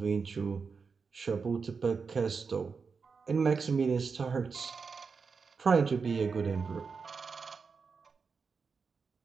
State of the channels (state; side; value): quieter; left; 5.2 dB